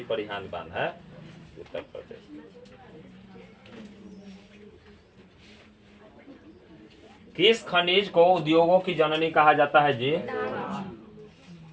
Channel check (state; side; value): identical; both; correlation 1.00